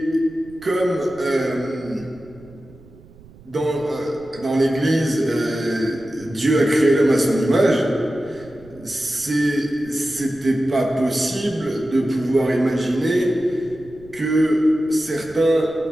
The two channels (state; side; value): noise; right; rumble, 23 dB below the sound